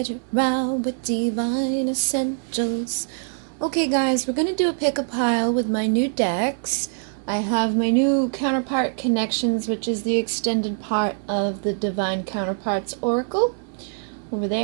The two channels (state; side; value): silent; left; digital silence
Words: Rau with Divine Essentials. Okay guys, we're going to do a pick a pile with my new decks. I have my new Counterpart Connections, which is the extended part of the Divine Counterparts Oracle. Over